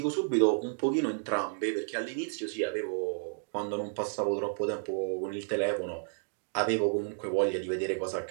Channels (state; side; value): silent; left; digital silence